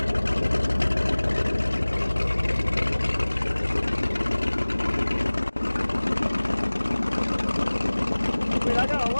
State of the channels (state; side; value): inverted; both; correlation -1.00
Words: I mean, I got a